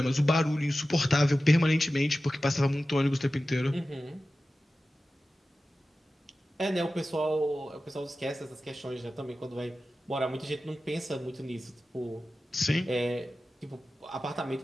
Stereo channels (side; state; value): both; normal; correlation 0.95